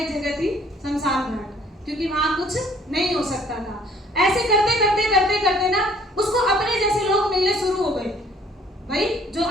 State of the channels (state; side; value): normal; both; correlation 0.58